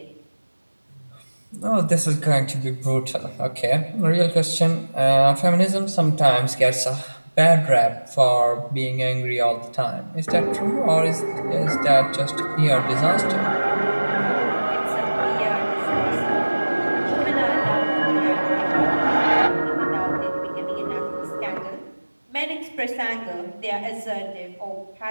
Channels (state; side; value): inverted; both; correlation -1.00